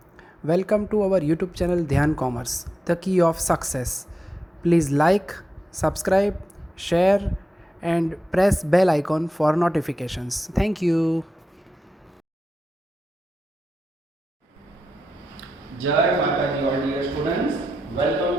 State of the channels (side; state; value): both; normal; correlation 0.89